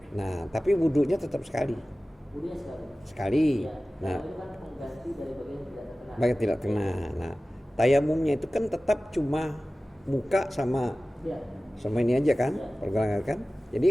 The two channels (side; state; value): both; normal; correlation 0.97